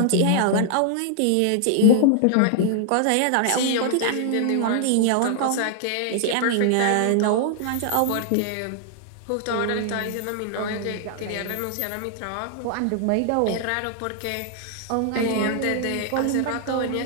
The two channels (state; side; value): different; both; correlation 0.00